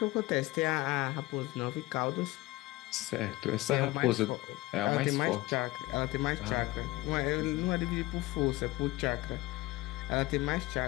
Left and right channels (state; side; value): quieter; right; 20.1 dB